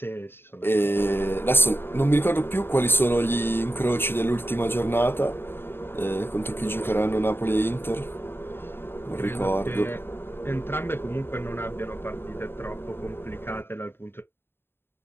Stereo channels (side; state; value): right; late; 0.11 ms